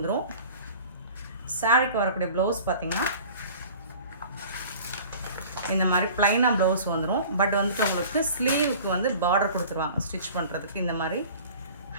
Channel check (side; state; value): both; inverted; correlation -0.44